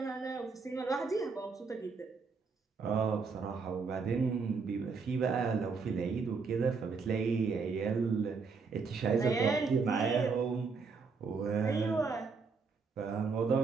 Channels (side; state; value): left; quieter; 4.9 dB